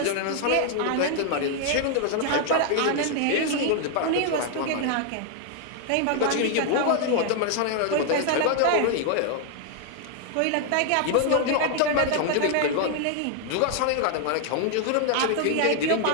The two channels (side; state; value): both; different; correlation 0.00